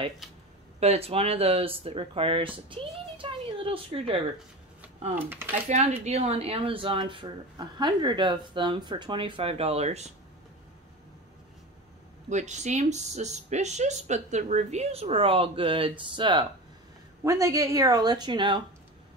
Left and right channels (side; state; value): both; normal; correlation 0.28